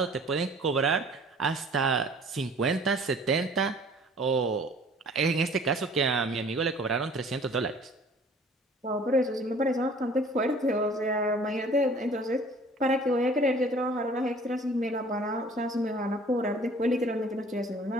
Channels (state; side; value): normal; both; correlation 0.51